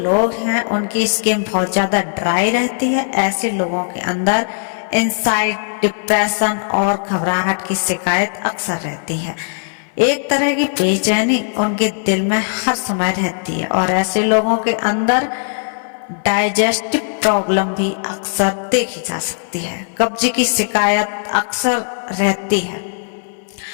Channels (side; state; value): right; silent; 59 dB below the other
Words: हैं उनकी स्किन बहुत ज़्यादा ड्राई रहती है, ऐसे लोगों के अंदर एंजाइटी, डिप्रेशन और घबराहट की शिकायत अक्सर रहती है। एक तरह की बेचैनी उनके दिल में हर समय रहती है और ऐसे लोगों के अंदर डाइजेस्टिव प्रॉब्लम भी अक्सर देखी जा सकती है। कब्ज की शिकायत अक्सर रहती है।